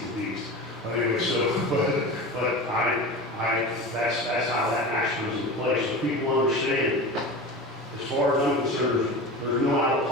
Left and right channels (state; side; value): normal; both; correlation 0.30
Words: beast. But anyway, that's how that action was in place. So people understand, as far as I'm concerned, there's no out of